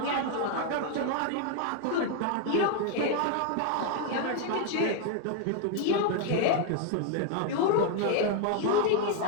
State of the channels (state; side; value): different; both; correlation 0.00